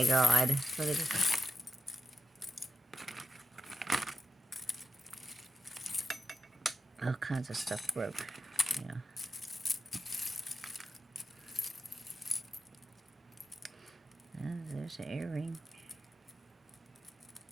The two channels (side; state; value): both; normal; correlation 0.88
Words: God. Look at this. All kinds of stuff broke. Yeah. There's an earring.